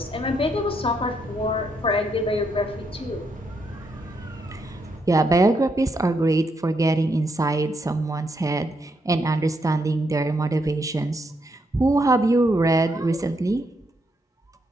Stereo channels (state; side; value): normal; both; correlation 0.78